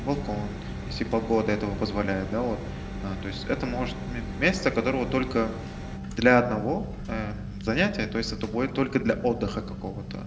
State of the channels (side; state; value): both; identical; correlation 1.00